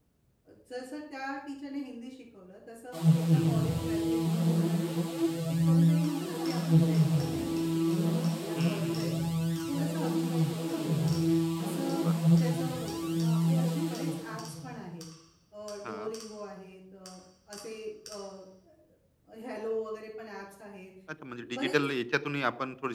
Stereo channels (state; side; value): identical; both; correlation 1.00